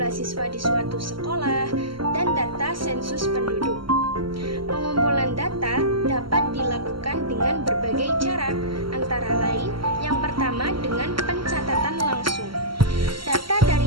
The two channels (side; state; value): left; late; 0.74 ms